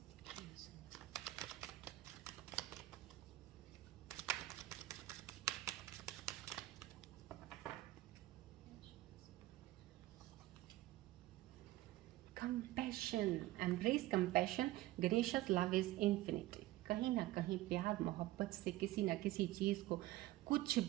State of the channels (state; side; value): quieter; left; 16.7 dB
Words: Compassion, embrace compassion. Ganesha's love is infinite. कहीं ना कहीं प्यार मोहब्बत से किसी ना किसी चीज़ को कुछ